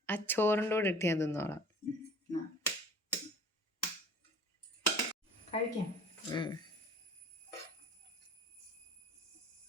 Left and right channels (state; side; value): normal; both; correlation 0.47